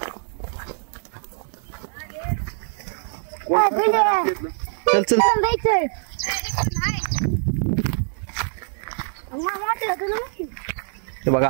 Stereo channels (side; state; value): left; silent; digital silence